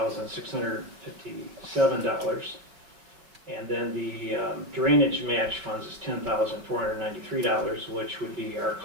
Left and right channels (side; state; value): left; late; 5.1 ms